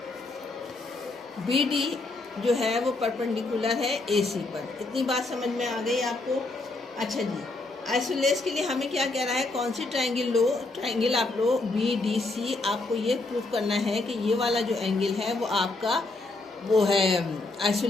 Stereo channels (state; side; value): quieter; right; 3.2 dB